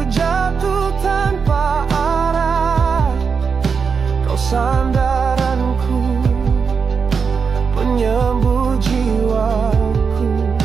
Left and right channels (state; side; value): quieter; left; 5.7 dB